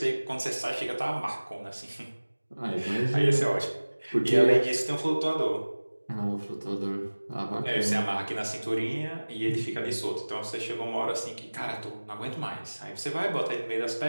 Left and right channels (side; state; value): both; inverted; correlation -1.00